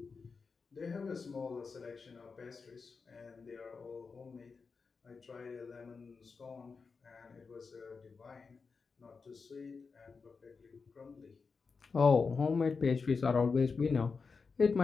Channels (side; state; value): right; quieter; 4.9 dB